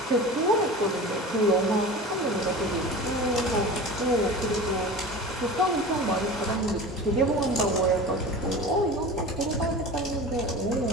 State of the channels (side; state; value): both; normal; correlation 0.35